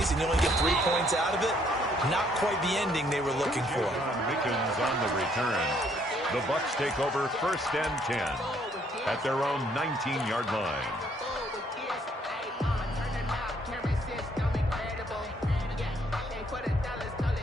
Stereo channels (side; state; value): both; normal; correlation 0.67